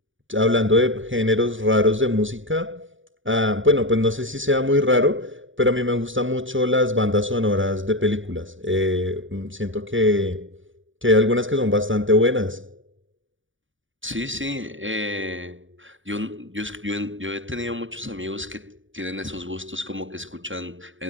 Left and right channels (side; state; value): left; late; 0.57 ms